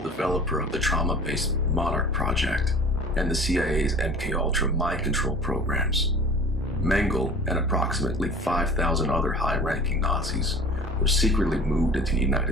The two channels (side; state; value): both; normal; correlation 0.43